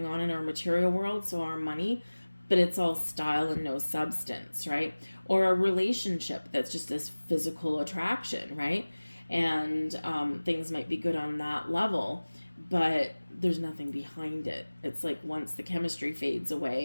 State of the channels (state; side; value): inverted; both; correlation -1.00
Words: on in our material world, so our money, but it's all style and no substance, right? Or a relationship that's just this physical attraction, right? And things might be good on that level, but there's nothing behind it. It's like once the chemistry fades